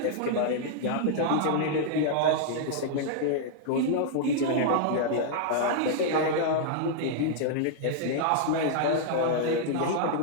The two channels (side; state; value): both; different; correlation -0.01